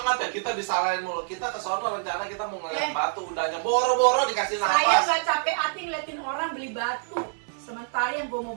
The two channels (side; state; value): left; silent; 61 dB below the other